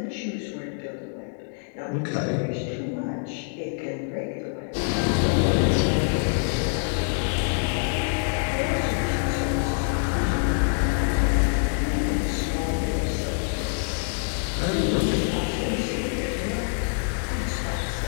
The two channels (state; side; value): silent; right; 61 dB below the other